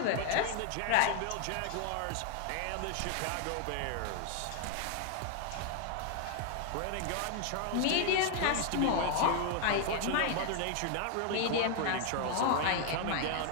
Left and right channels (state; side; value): different; both; correlation 0.00